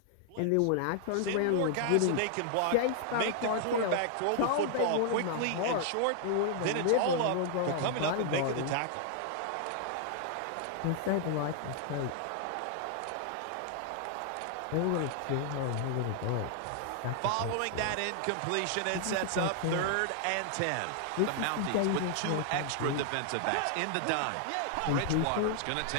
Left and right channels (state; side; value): different; both; correlation 0.00